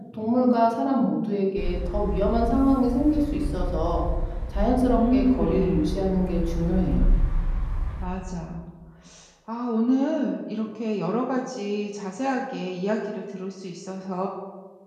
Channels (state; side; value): identical; both; correlation 1.00